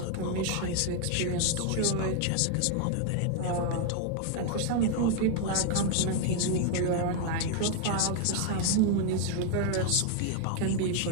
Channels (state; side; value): different; both; correlation 0.00